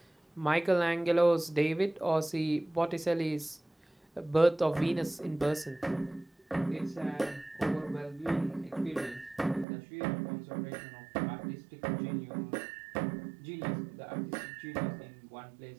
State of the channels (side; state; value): left; drops out; at 9.7 s